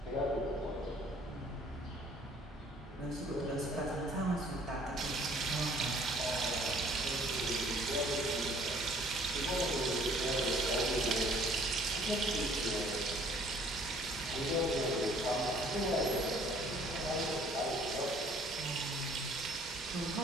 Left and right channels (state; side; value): normal; both; correlation 0.57